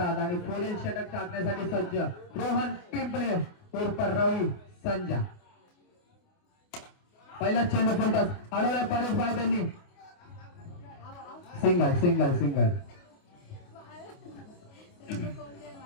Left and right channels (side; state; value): right; late; 28 ms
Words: आणि पुढील षटक टाकण्यासाठी सज्ज रोहन पिंपळे उर्फ रवी संजा. पहिला चेंडू फुलटॉस अडवला परेश भाई त्यांनी सिंगल सिंगल सिंगल.